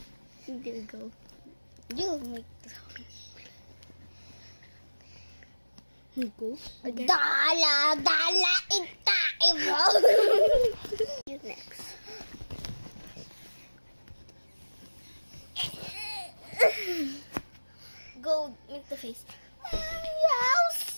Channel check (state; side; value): inverted; both; correlation -1.00